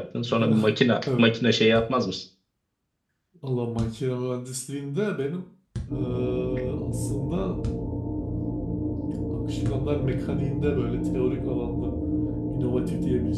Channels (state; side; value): identical; both; correlation 1.00